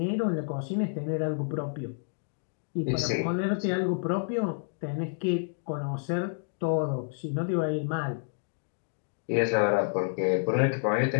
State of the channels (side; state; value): right; silent; digital silence